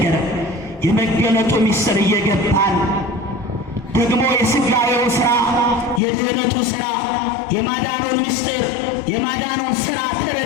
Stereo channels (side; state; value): right; drops out; at 6.0 s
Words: የመገለጡ ምስጢር እየገባን ደግሞ የሥጋዌው ሥራ፣ የድኅነቱ ሥራ፣ የማዳኑን ምስጢር፣ የማዳኑን ሥራ